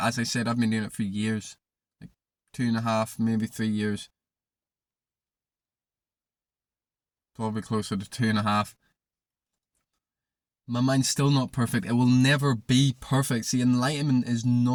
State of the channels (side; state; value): both; identical; correlation 1.00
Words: I said, I've been doing it for years. Like 2.5, maybe 3 years. Probably closer to 2.5. My mind's still not perfect. It will never be perfect. See, enlightenment is